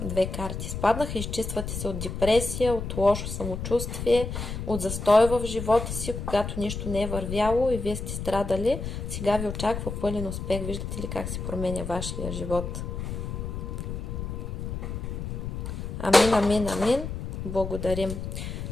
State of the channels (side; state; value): left; noise; rumble, 5 dB below the sound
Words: карти спаднаха. Изчиствате се от депресия, от лошо самочувствие, от застой в живота си, когато нищо не е вървяло и вие сте страдали. Сега ви очаква пълен успех. Виждате ли как се променя вашия живот? Амин, амин, амин. Благодарим.